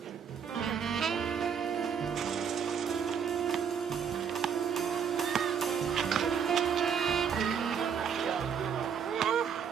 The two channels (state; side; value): quieter; left; 7.2 dB